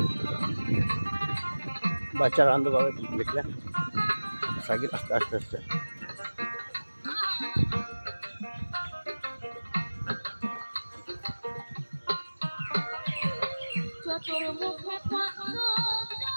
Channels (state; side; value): inverted; both; correlation -1.00